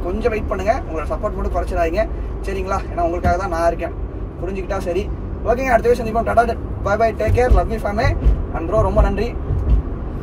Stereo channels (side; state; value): both; identical; correlation 1.00